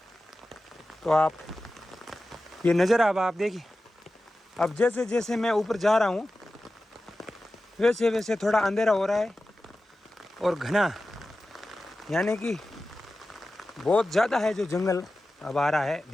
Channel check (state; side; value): normal; both; correlation 0.94